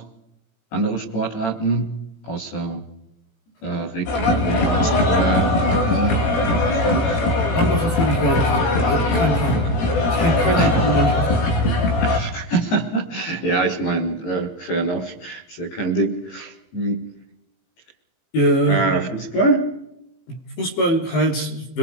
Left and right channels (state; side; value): late; right; 18 ms